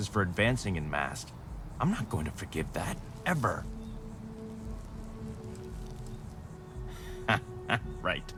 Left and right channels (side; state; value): both; identical; correlation 1.00